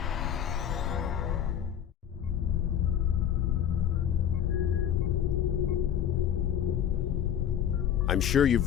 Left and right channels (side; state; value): right; quieter; 9.5 dB